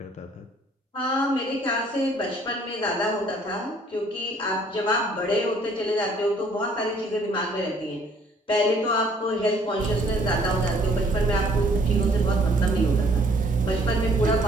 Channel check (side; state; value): both; normal; correlation 0.60